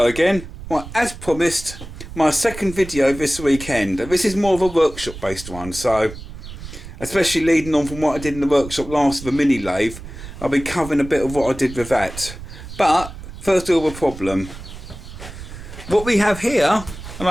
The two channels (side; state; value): right; noise; rumble, 13 dB below the sound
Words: again. Well, as promised, my second video this weekend. This is more of a workshop based one, so especially leading on from what I did in the workshop last with the mini lathe, I'll be covering a bit of what I did with that. But first of all, the problem. What we have here, and